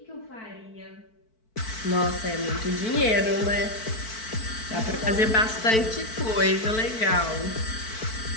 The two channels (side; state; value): right; late; 4.5 ms